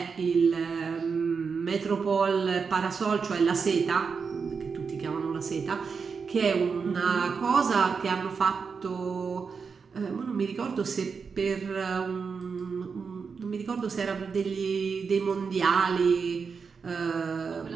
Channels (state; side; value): quieter; left; 5.5 dB